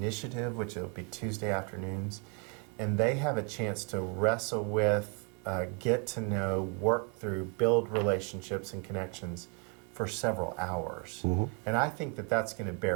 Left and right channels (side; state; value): left; quieter; 35.0 dB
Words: which will be Tuesday afternoons, and they have a chance to wrestle with, get to know, work through, build relationships and connections for several hours. And I think that that's going to